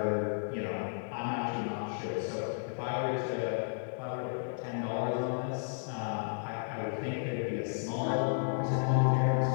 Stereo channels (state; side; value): silent; right; digital silence